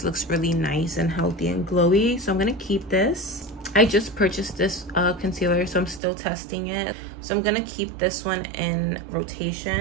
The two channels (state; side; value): drops out; left; at 6.0 s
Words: looks really nice and healthy and glowy. So I'm going to keep this. I just purchased this concealer, so I'm still testing it. So I'm gonna keep this one in